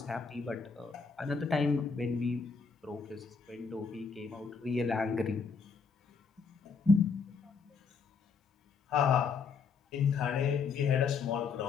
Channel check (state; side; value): quieter; right; 5.3 dB